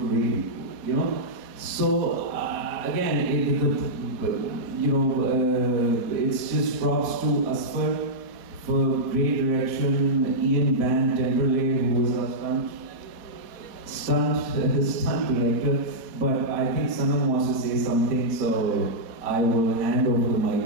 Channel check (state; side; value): late; left; 4.2 ms